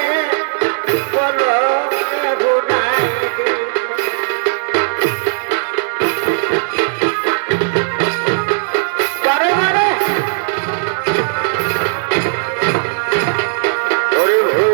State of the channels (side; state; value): left; silent; digital silence